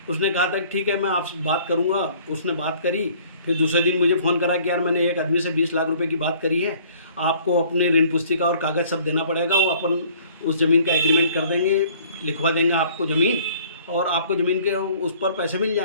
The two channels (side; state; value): both; inverted; correlation -0.55